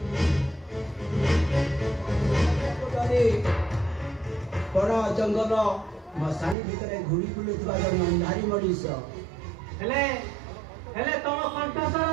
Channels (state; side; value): drops out; left; at 6.6 s